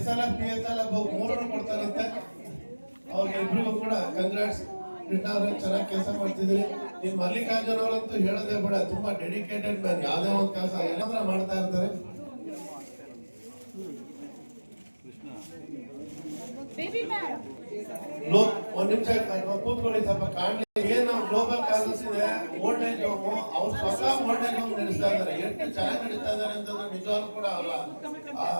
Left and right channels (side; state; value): both; inverted; correlation -1.00